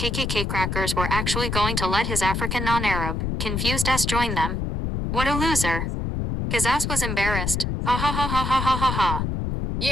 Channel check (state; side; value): noise; left; rumble, 2 dB below the sound